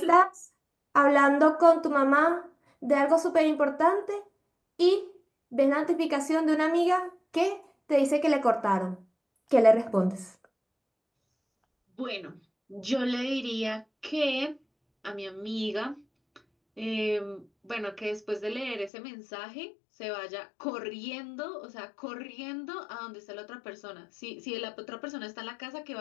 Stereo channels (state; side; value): drops out; right; at 18.9 s